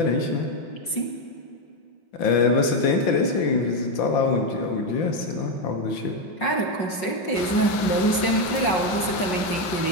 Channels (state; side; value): late; right; 5.4 ms